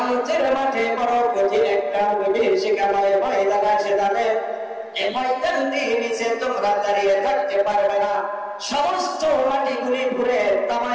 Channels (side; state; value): both; identical; correlation 1.00